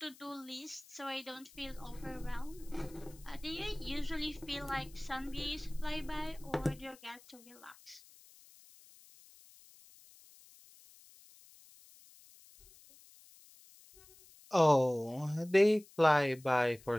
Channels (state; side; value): noise; left; hiss, 23 dB below the sound